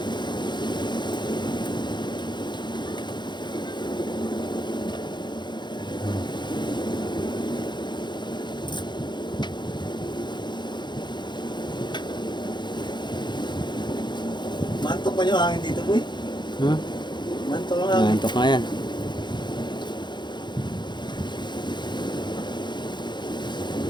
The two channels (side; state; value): right; late; 0.22 ms